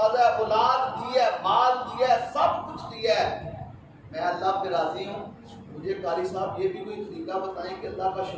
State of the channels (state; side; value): identical; both; correlation 1.00